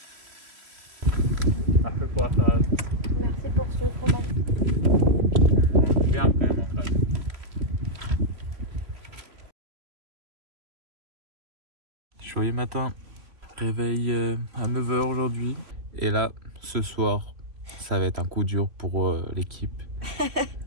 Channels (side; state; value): left; late; 3.0 ms